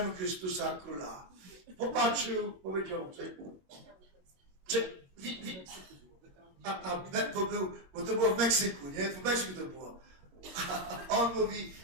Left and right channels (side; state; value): left; late; 22 ms